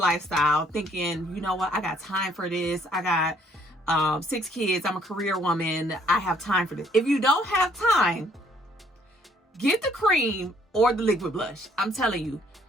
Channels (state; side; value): normal; both; correlation 0.65